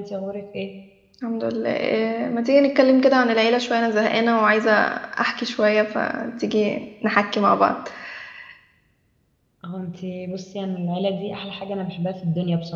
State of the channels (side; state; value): both; identical; correlation 1.00